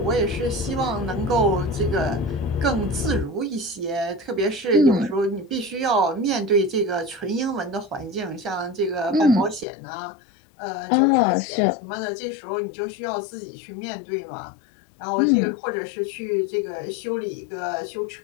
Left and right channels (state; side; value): drops out; right; at 9.7 s